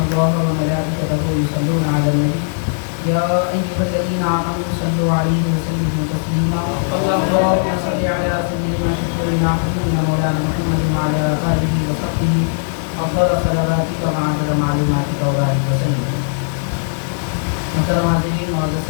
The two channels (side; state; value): right; silent; 67 dB below the other